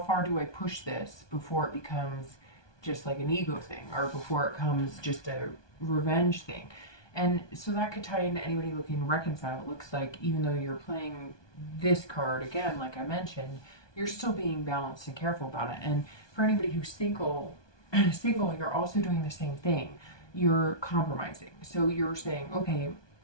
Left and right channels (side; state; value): right; late; 1.2 ms